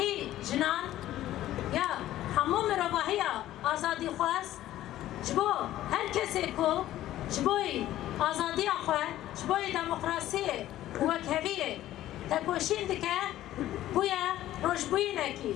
jinan ya hemû mirovahiya azadî xwaz ji bo her kesê ku ji bo azadiya xwe ji bo demokrasiyê û wekheviyê tekoşîn dike bu ye rojbûyînekî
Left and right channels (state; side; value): quieter; right; 13.8 dB